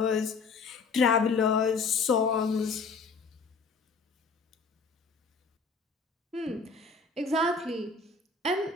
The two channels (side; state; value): right; quieter; 4.5 dB